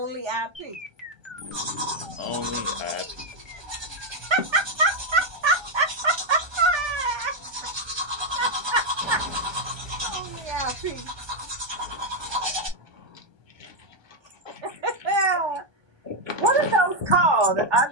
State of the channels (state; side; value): late; left; 1.2 ms